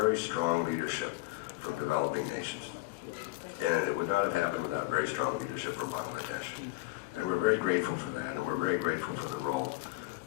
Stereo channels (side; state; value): right; quieter; 20.7 dB